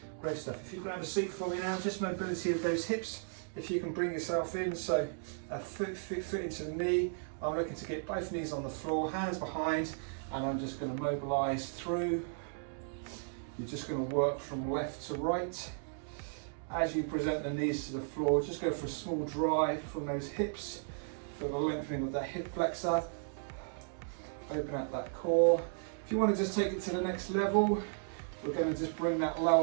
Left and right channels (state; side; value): silent; left; digital silence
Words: Great stuff. If you can have a seat for me now, just mobility of those hips. If you can bring yourself in, so a foot into the knee. I'm looking to get both knees on the floor, hands behind, and I'm just going to mobilise through. You're just going to work from left to right. As you present the knees to the floor, just go for a small drive from those hips. Feel the lengthening of that hip flexor. Open up that core. If you want to just take it to the next level, we're going to just bring that